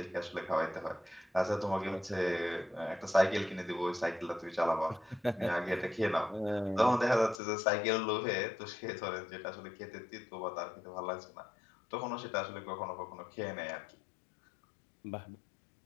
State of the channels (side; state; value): right; drops out; at 7.4 s